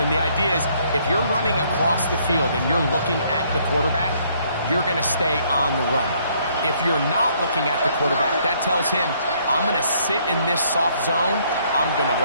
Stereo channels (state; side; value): inverted; both; correlation -0.66